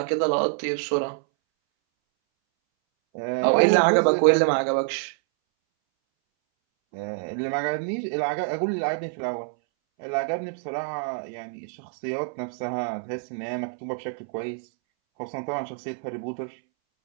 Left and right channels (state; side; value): silent; left; 60 dB below the other